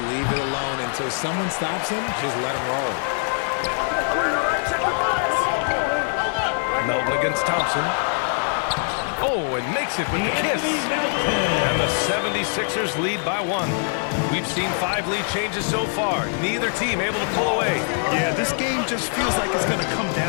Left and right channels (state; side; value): silent; right; 60 dB below the other